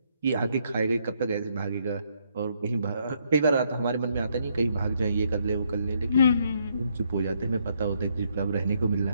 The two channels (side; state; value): both; inverted; correlation -0.73